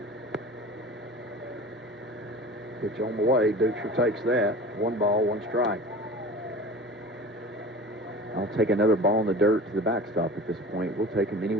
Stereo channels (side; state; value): both; normal; correlation 0.37